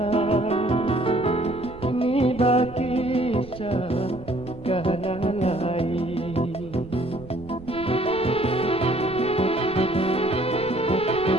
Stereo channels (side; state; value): right; noise; rumble, 16 dB below the sound